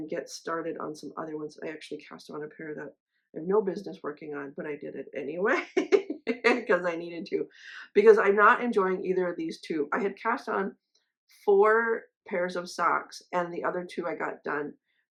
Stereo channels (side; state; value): both; identical; correlation 1.00